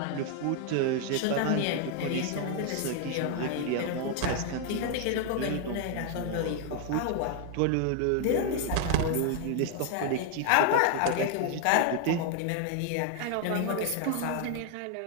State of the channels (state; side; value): different; both; correlation 0.00